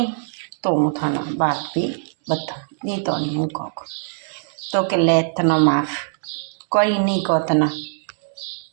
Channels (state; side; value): silent; left; digital silence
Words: तो हूँ थाना बात भी बता नी तो नहीं हूँ को। तो के ले तना माफ कोई नहीं को तना